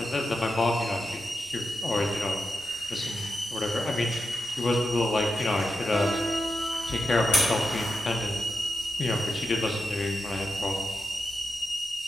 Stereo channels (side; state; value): right; noise; rumble, 27 dB below the sound